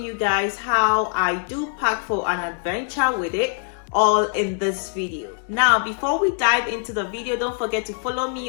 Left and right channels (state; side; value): silent; right; 57 dB below the other